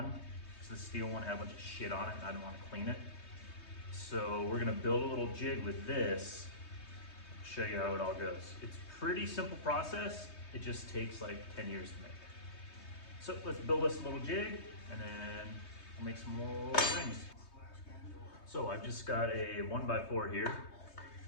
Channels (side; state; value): right; late; 3.2 ms